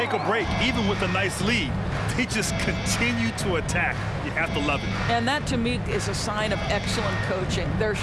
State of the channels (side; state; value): both; identical; correlation 1.00